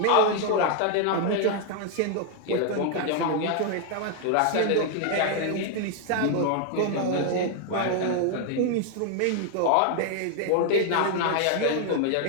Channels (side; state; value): both; different; correlation 0.00